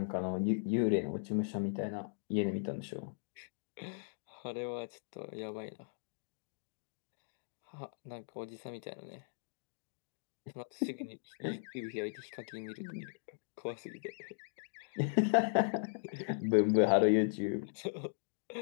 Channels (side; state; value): right; silent; digital silence